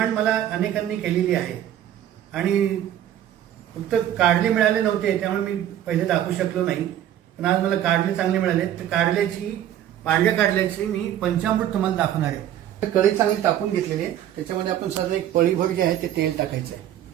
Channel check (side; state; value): left; quieter; 11.3 dB